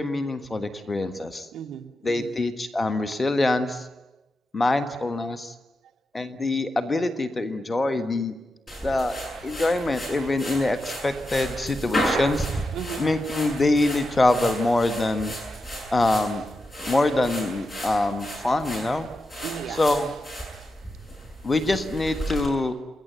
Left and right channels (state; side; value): normal; both; correlation 0.89